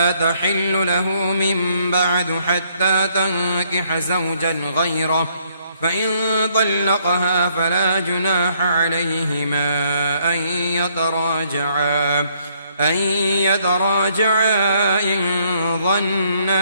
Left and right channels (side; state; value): both; inverted; correlation -0.68